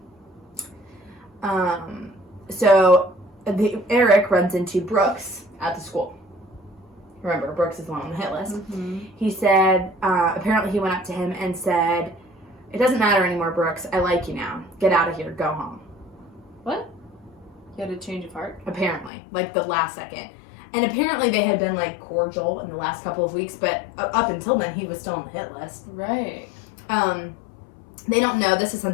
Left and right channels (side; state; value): right; drops out; at 19.1 s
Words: Eric runs into Brooks at the school. Remember, Brooks is the one on the hit list. He said, apparently he went up to him and said, "It doesn't matter anymore, Brooks. I like you now. Get out of here. Go home." What? You had a change of heart? Apparently. Like, the last second. And apparently they had been, like, cordial in the last couple of weeks, but up until then, he was still on the hit list. Right. They don't know. This is